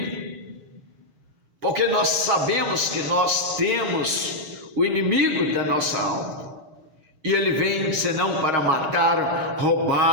porque nós sabemos que nós temos o inimigo da nossa alma, E ele vem senão para matar,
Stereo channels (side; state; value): left; late; 6.4 ms